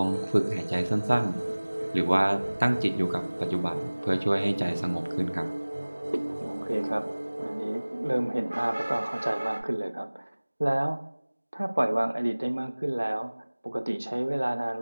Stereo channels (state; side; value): inverted; both; correlation -1.00